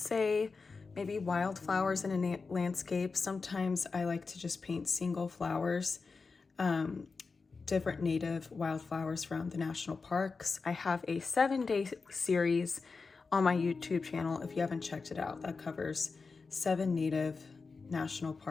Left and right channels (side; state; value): right; quieter; 4.5 dB